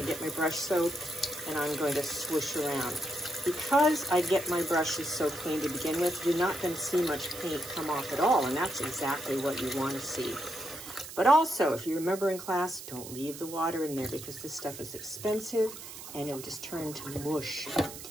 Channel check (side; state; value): right; noise; hiss, 12 dB below the sound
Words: get my brush soap and I'm going to swoosh around. Because I get my brushes so clean to begin with, you're not going to see much paint come off at all, and that's exactly what you want to see. But also, if you remember in class, don't leave the water in there because this stuff is expensive and it'll just turn to mush,